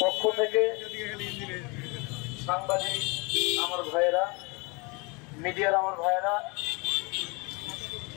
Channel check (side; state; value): right; quieter; 29.1 dB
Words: পক্ষ থেকে সাংবাদিক আমার ভাইয়েরা, মিডিয়ার আমার ভাইয়েরা,